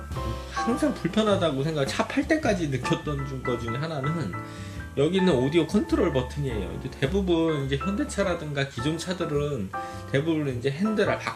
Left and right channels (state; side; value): identical; both; correlation 1.00